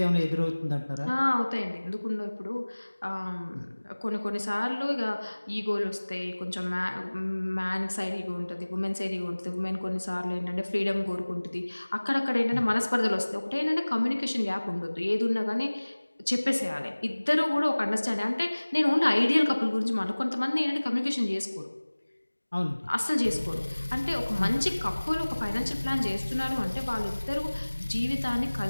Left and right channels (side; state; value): both; inverted; correlation -1.00